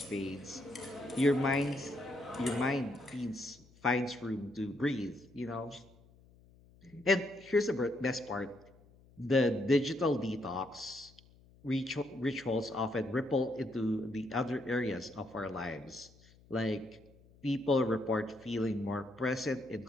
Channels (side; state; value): left; noise; hum, 26 dB below the sound